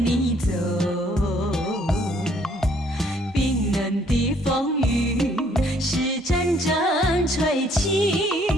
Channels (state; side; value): normal; both; correlation 0.64